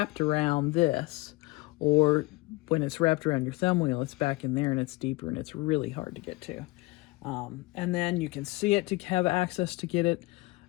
around this, or when it's wrapped around your thumb wheel, it's back in there and it's deeper and it's really hard to get to. And then you can see it to have access to get it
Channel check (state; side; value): quieter; right; 22.0 dB